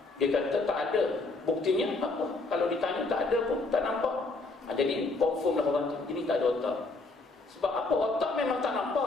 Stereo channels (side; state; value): right; quieter; 3.4 dB